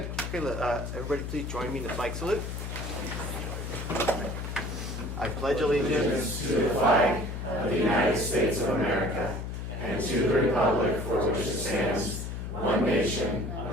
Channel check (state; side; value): noise; left; hum, 6 dB below the sound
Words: Okay, everybody please join me in the flag salute. I pledge allegiance to the flag of the United States of America and to the republic for which it stands, one nation,